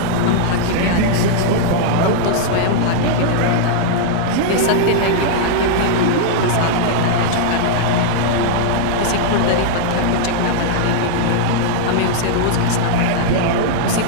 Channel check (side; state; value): both; different; correlation -0.01